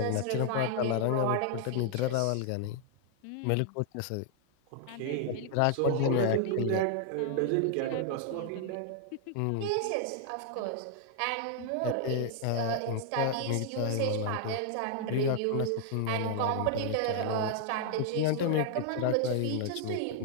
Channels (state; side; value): different; both; correlation 0.00